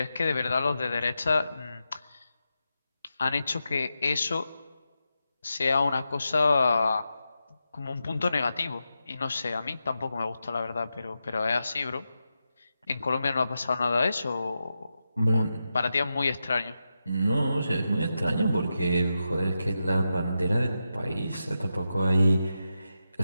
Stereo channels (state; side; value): inverted; both; correlation -0.89